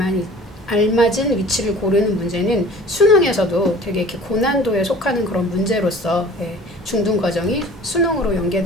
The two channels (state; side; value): normal; both; correlation 0.46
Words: 알맞은 위치를 고르는 문제는 수능에서도 되게 이렇게 고난도에 속하는 그런 문제로서 중등 과정이 수능으로